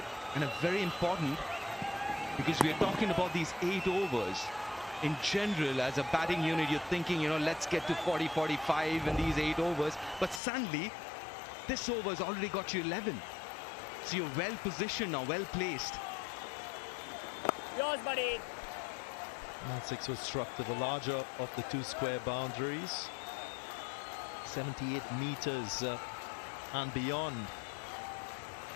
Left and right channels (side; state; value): right; drops out; at 10.4 s